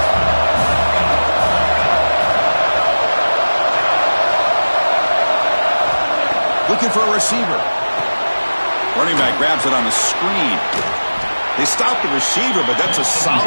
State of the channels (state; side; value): inverted; both; correlation -1.00